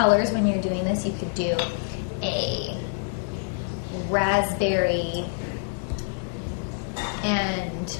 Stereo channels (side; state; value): right; silent; 61 dB below the other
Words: when you're doing this. You could do a raspberry and